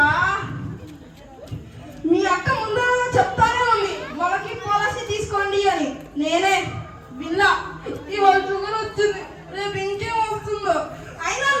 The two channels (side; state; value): both; identical; correlation 1.00